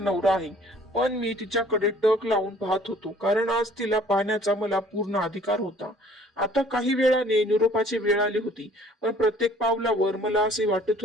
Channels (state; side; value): normal; both; correlation 0.55